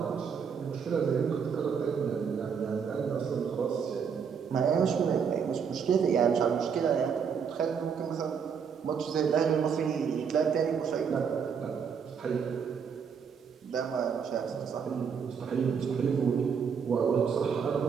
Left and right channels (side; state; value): left; quieter; 6.7 dB